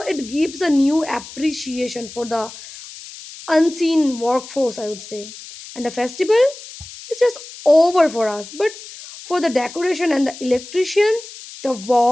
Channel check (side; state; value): left; noise; hiss, 15 dB below the sound